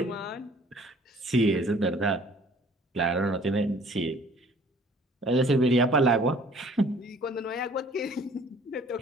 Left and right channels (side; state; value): both; normal; correlation 0.54